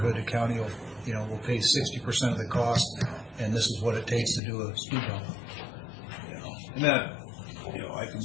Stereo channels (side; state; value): right; drops out; at 4.4 s